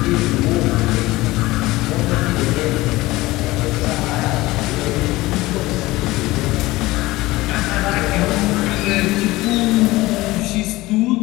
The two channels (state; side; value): quieter; right; 19.3 dB